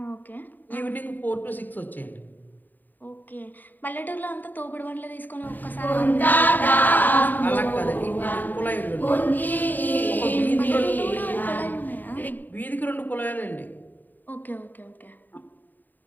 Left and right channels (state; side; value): late; right; 0.088 ms